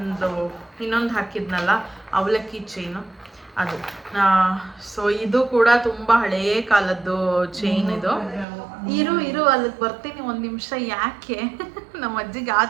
ಇನ್ನೊಂದು ಹಾಕಿದ್ನಲ್ಲ ಅವಲಕ್ಕಿ ಚೈನು, ಅದು. ಸೊ ಇದು ಕೂಡ ತುಂಬ ಹಳೆಯ ಕಾಲದ್ದು ಚೈನ್ ಇದು. ಇರು ಅಲ್ಲಿಗೆ ಬರ್ತೀನಿ ಒಂದು ನಿಮಿಷ. ಯಾಕೆ ನಮ್ಮ ಅಜ್ಜಿಗೆ ಆ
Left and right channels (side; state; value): left; drops out; at 8.5 s